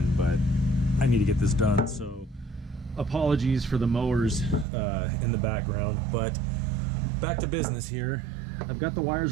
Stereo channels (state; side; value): drops out; left; at 4.7 s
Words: but I need to get this done. So apologies for the mowers in the background, but back to business here. I've got the